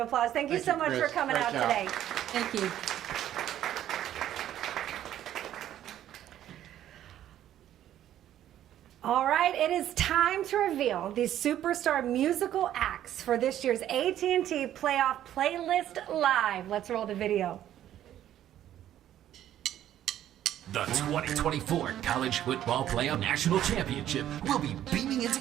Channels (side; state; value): left; quieter; 11.7 dB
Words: Thank you so much for coming out today. Thank you. All right, it is time to reveal the superstar musical acts for this year's AT&T Playoff Playlist Live. Let's roll the video. The 2024 College Football Playoff National Championship will be beaming into